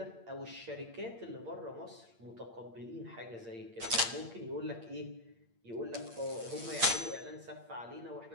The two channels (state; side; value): late; left; 8.7 ms